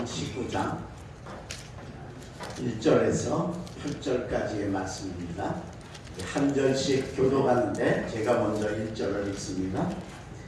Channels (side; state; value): both; identical; correlation 1.00